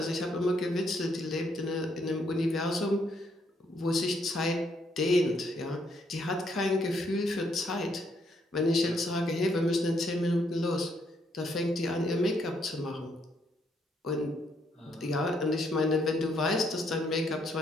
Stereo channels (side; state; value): both; normal; correlation 0.72